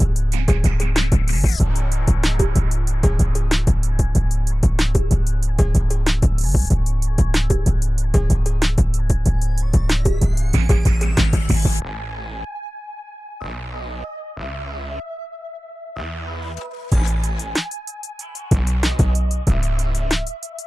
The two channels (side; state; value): both; normal; correlation 0.97